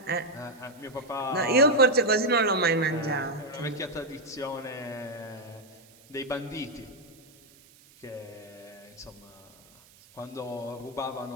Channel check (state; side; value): noise; right; hiss, 26 dB below the sound